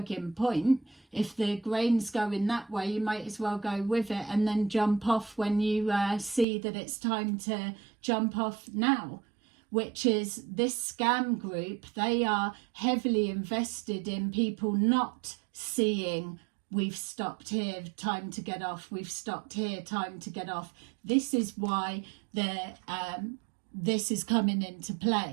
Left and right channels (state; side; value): drops out; left; at 6.5 s